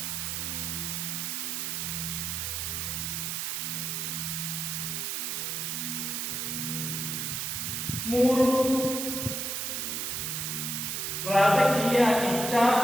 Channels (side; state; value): right; noise; hiss, 2 dB below the sound